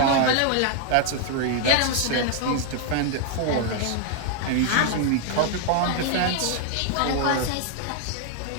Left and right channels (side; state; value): both; different; correlation 0.00